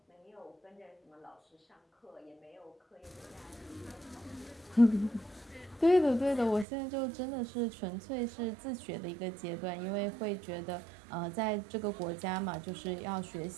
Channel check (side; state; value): left; drops out; at 6.7 s